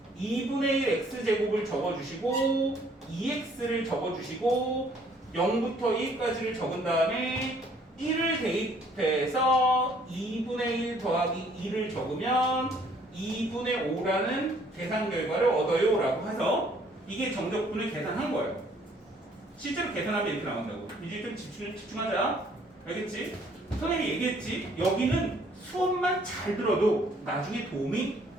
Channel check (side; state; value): both; normal; correlation 0.61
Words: 2분의 1 x제곱을 적어주시고 2x를 적어주시고 0부터 1까지를 적은 다음에 1을 대입해서 2분의 1 더하기 2를 적으면 2분의 5라는 계산 결과를 얻어요 라고 해서 이게 정적분을 계산한 거예요. 실제로 계산하면 이렇게 나온다고. 이제 좀 집중하자. 알겠지? 선생님이 얘기했지. 여기는 수업만 잘 들어도 나중에 도움이